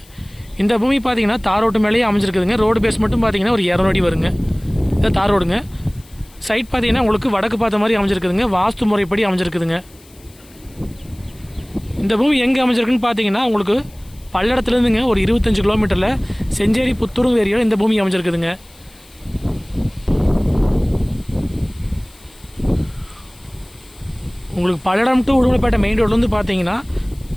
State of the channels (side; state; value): left; noise; hiss, 26 dB below the sound